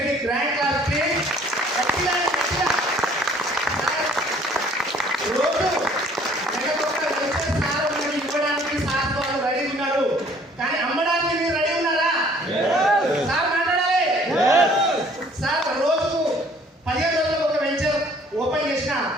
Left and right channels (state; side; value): normal; both; correlation 0.57